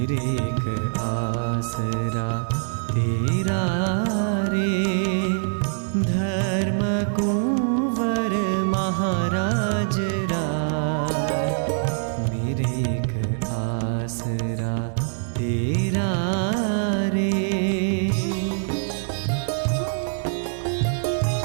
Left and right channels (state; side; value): silent; left; 63 dB below the other